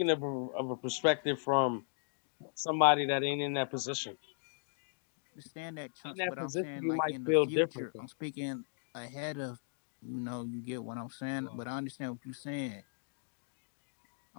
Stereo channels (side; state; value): right; silent; digital silence